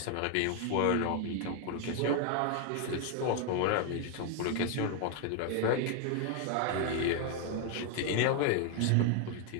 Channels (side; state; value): both; different; correlation 0.01